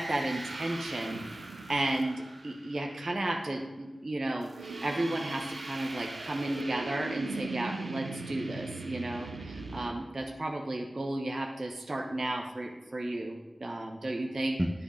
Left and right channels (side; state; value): both; normal; correlation 0.96